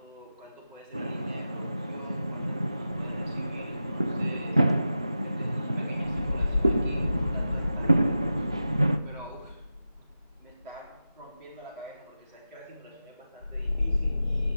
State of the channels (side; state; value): both; inverted; correlation -0.92